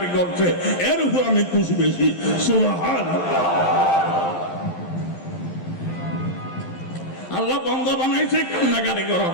করছে, এর উপর আমি খুশি বেশি। সুবহানাল্লাহ। আল্লাহ বান্দা বানাইছে কান্নাকাটি করার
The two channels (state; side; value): late; right; 11 ms